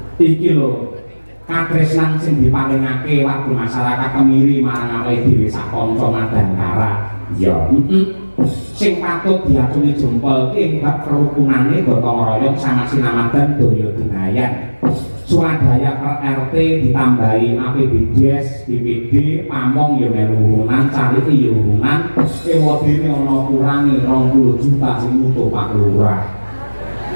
Iki lho katresnan sing dipalingake warga masyarakat Kemiri marang awake dhewe sak kanca Madangkara. Iya, sing patut diaturi jempol ing bab kerukunane gotong royong sama sinamadan daya dinayan. Swadaya per RT ditambahi APBDes, BPD, pamong ya melu urunan, carite ya urunan, ewadene ana kurange 20 juta sing utuh Pak Lurah.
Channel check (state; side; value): inverted; both; correlation -1.00